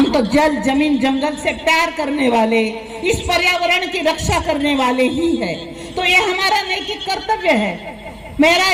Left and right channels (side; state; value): both; identical; correlation 1.00